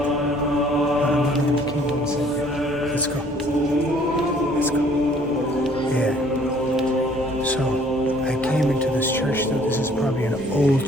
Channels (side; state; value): both; normal; correlation 0.58